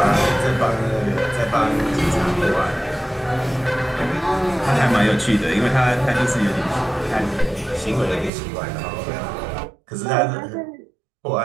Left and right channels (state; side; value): drops out; left; at 8.3 s